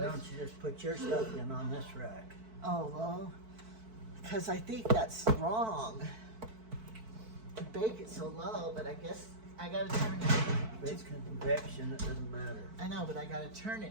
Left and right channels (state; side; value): late; left; 4.5 ms